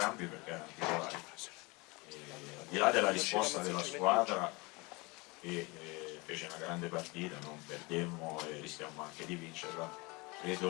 perché erano titolari. Al di là della risposta della squadra, che fece una grande partita, non perdemmo e rischiamo anche di vincerla,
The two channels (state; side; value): quieter; right; 25.9 dB